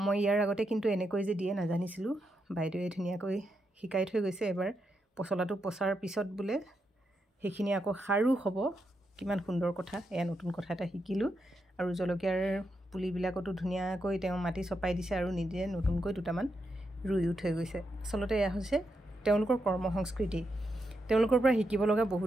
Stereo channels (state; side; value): normal; both; correlation 0.83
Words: ইয়াৰ আগতে কিন্তু এনেকৈ যে দিয়ে নাজানিছিলো বাইদেৱে ধুনিয়াকৈ শিকাই থৈ গৈছে এবাৰ পছলাটো পছাৰ পিছত বুলে হেখিনি আকৌ খাৰু হ'ব কিমান সুন্দৰ কথা এয়া নতুন কথা এটা শিকিলো আৰু জলকীয়াৰ পুলিবিলাকটো ধুনিয়াকৈ তেওঁ মাটি চপাই দিছে আৰু নিজে নতুনকৈ দুটামান ৰুইও থৈ গৈছে আসলতে এয়া হৈছে তেওঁলোকৰ কৰ্ম সংস্কৃতি তেওঁলোকৰ পৰা শিকিব লগা